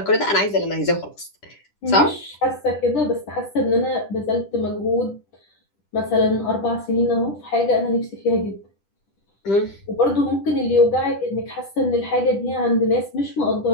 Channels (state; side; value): late; right; 10 ms